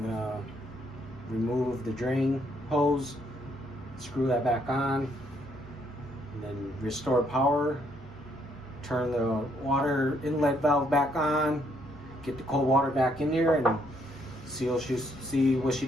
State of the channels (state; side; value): normal; both; correlation 0.71